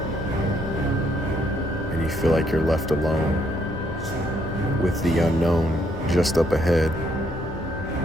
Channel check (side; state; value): both; normal; correlation 0.71